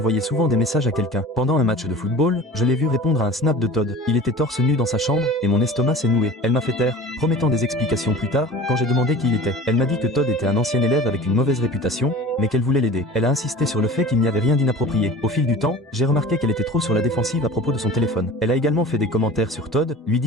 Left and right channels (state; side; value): normal; both; correlation 0.39